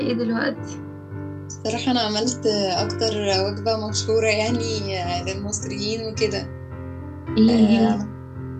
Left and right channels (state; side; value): identical; both; correlation 1.00